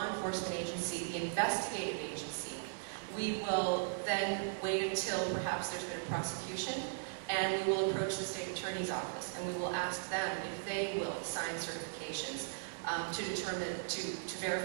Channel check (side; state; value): left; silent; 53 dB below the other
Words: enforcement agency, the investigative agency, we will then wait until perhaps there's been a prosecution, and we will approach the state attorney's office, and we will ask them if they will sign certifications to